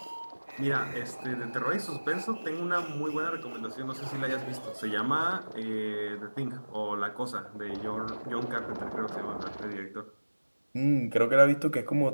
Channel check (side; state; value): both; inverted; correlation -1.00